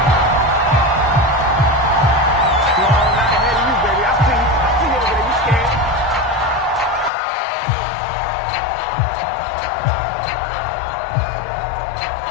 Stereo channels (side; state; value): right; drops out; at 7.1 s